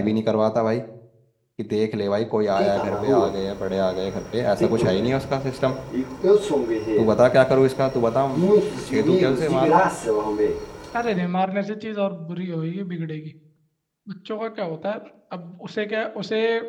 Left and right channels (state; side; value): identical; both; correlation 1.00